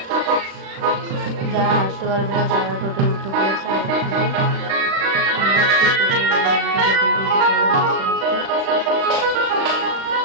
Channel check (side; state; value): left; late; 36 ms